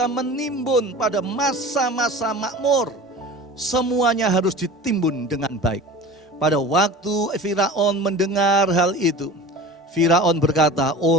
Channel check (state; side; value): normal; both; correlation 0.37